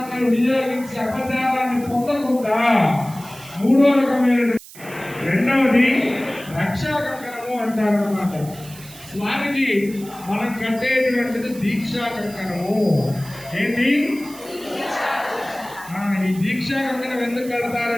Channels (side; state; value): right; noise; hiss, 18 dB below the sound